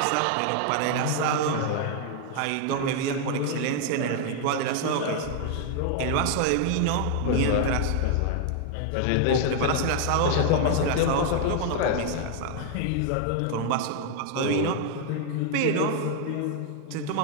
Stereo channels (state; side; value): different; both; correlation 0.00